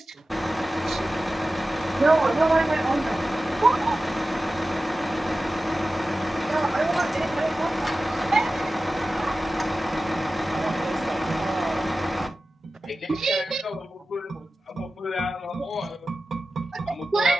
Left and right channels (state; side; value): normal; both; correlation 0.95